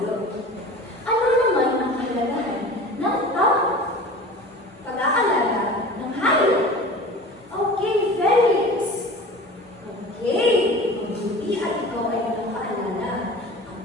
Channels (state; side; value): normal; both; correlation 0.38